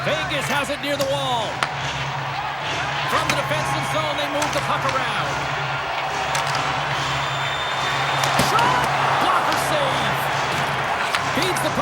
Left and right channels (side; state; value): both; identical; correlation 1.00